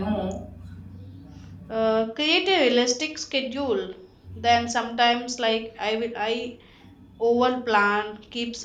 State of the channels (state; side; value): identical; both; correlation 1.00